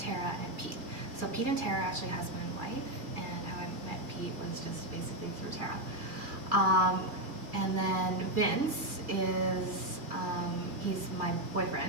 and Pete. So Pete and Tara are actually husband and wife, and how I met Pete was just basically through Tara. And then Vince is, he's my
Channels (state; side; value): late; left; 2.4 ms